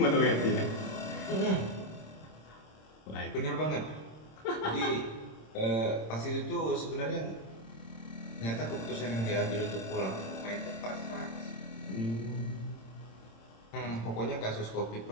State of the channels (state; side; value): late; right; 26 ms